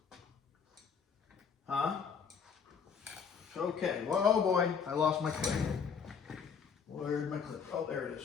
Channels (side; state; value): right; quieter; 6.4 dB